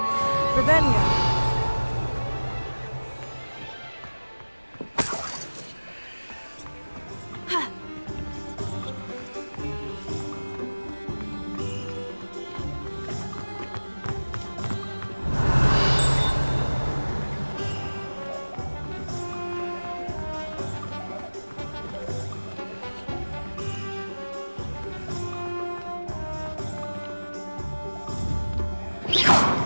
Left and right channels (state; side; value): inverted; both; correlation -1.00